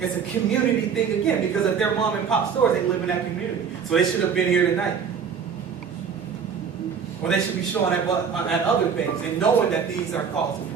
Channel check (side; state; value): left; quieter; 6.7 dB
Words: a community thing again, because if they're mom and pop stores, they live in that community. So they should have been here tonight. Or they should be showing at other things and knowing that these are causing